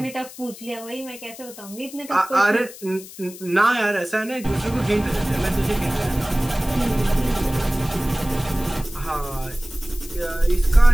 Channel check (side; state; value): left; noise; hiss, 16 dB below the sound